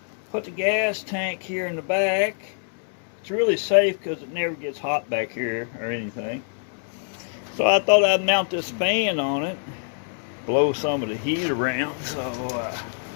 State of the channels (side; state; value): right; silent; 62 dB below the other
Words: Put the gas tank here in the back. It's really safe because it never gets hot back here or anything. So I thought I'd mount this fan on it, blow some of the heat around. So,